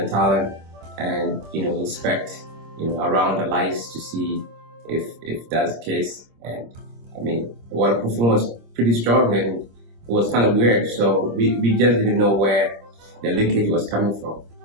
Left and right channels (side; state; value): left; late; 26 ms